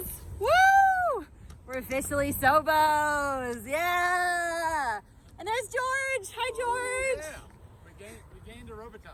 Woo! We're officially SOBOs. Yeah. And there's George. Hi, George. Yeah. We gained a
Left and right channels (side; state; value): both; identical; correlation 1.00